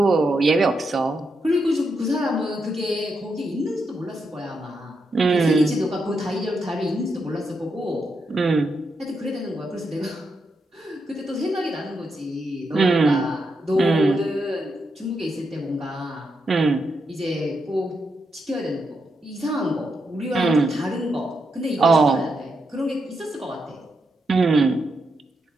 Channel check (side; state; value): both; normal; correlation 0.83